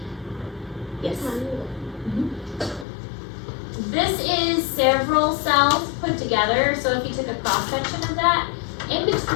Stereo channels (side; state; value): right; drops out; at 2.9 s